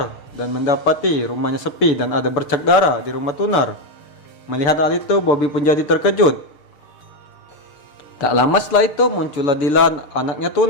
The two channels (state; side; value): late; right; 6.7 ms